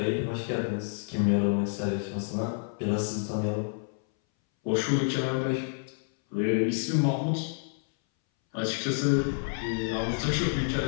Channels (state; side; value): silent; right; 59 dB below the other